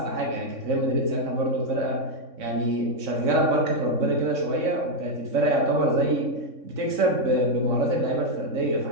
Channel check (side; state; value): left; late; 3.6 ms